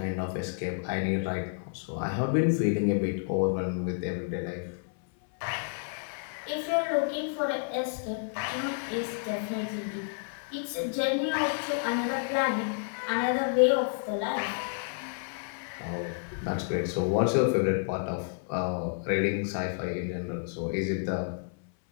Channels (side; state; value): right; silent; 58 dB below the other